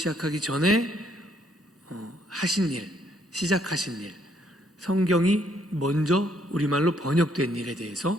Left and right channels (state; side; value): normal; both; correlation 0.69